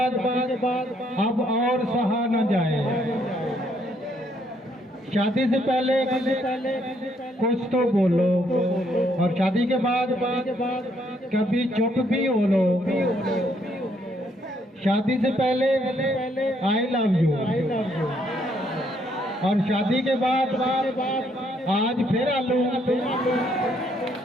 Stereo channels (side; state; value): both; normal; correlation 0.71